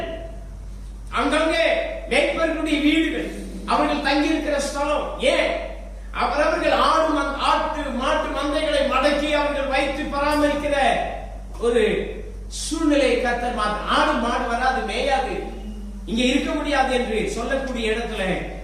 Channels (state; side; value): identical; both; correlation 1.00